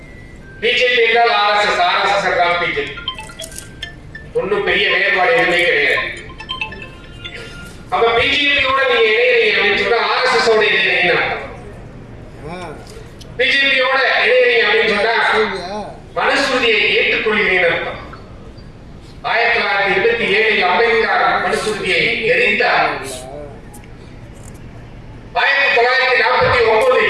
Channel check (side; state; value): both; identical; correlation 1.00